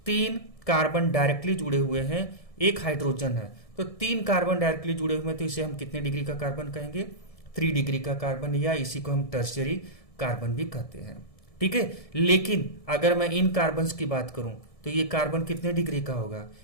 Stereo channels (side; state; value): right; late; 1.7 ms